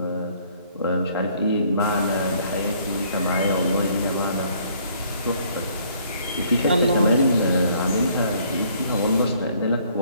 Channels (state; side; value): inverted; both; correlation -0.62